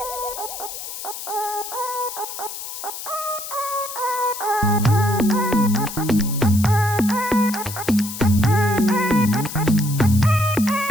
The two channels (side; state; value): left; noise; hiss, 9 dB below the sound